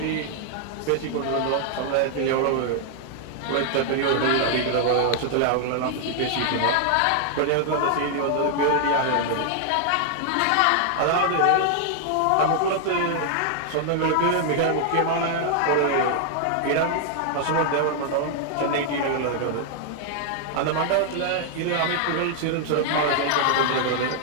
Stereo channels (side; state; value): both; different; correlation 0.00